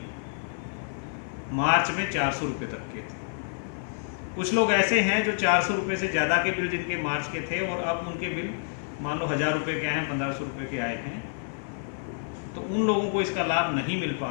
मार्च में 400 रुपये तक के थे। कुछ लोग ऐसे हैं जो 400 रुपये से ज़्यादा के बिल जिनके मार्च के थे और अब उनके बिल मान लो 1000 रुपये के आए हैं, 1500 रुपये के आए हैं, तो उन लोगों को इसका लाभ नहीं मिल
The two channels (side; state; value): right; silent; 55 dB below the other